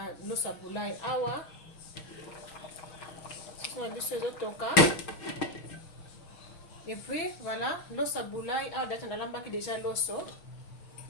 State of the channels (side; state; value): right; late; 6.2 ms